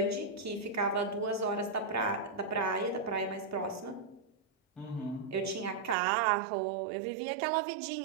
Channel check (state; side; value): drops out; left; at 6.0 s